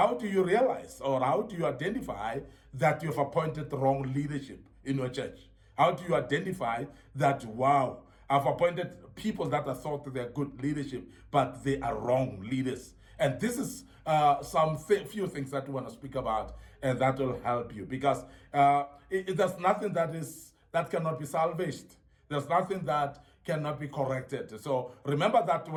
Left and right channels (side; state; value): both; identical; correlation 1.00